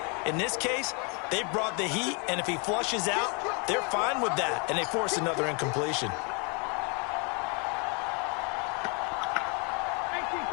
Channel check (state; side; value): quieter; right; 33.5 dB